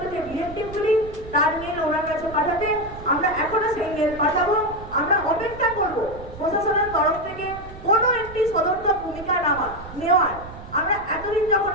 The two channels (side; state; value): right; noise; rumble, 15 dB below the sound